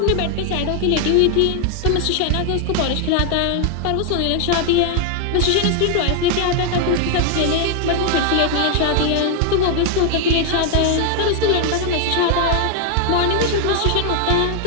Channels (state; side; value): different; both; correlation 0.00